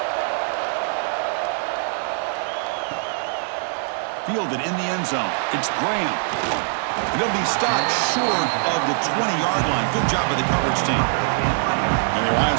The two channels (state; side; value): silent; left; 64 dB below the other